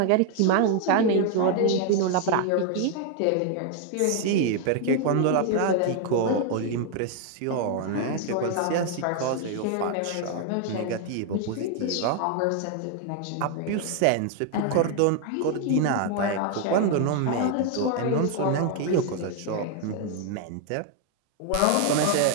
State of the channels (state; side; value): different; both; correlation 0.00